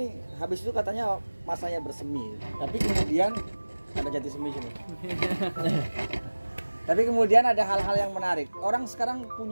habis itu katanya masanya bersemi, tapi kemudian ada jati semi sini. Tapi kemudian ada hal-hal yang menarik. Orang sekarang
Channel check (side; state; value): both; inverted; correlation -1.00